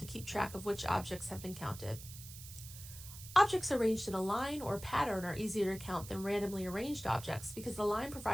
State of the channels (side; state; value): right; noise; hiss, 14 dB below the sound